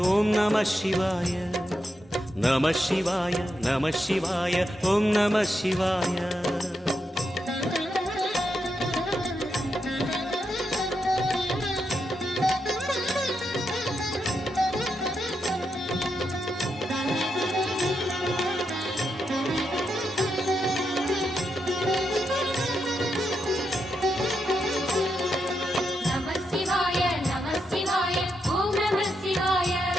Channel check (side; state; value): both; normal; correlation 0.84